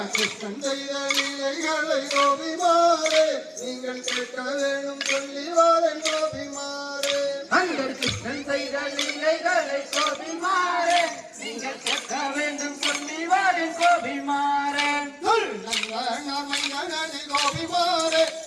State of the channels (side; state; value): both; identical; correlation 1.00